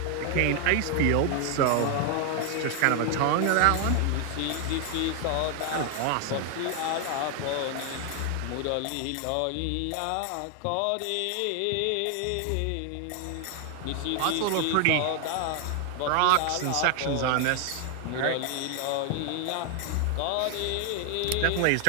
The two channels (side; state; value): both; different; correlation 0.00